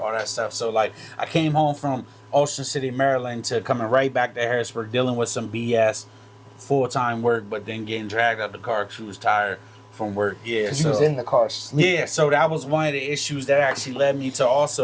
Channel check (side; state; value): both; identical; correlation 1.00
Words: that stuff. So like, I came home from Ocean City, Maryland, to coming right back to Harrisburg, dealing with some BS, full-time work, but then getting dragged out the car because she was tired from work. Yeah, so you was in the car sleeping. Yeah, so that was one of the issues that actually led me to